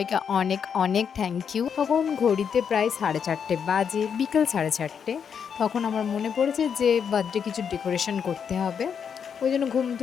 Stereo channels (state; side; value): quieter; right; 7.2 dB